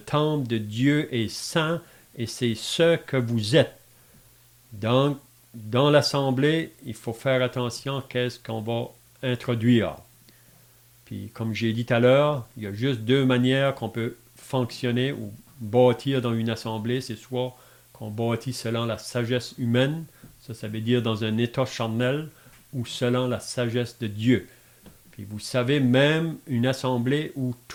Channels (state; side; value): identical; both; correlation 1.00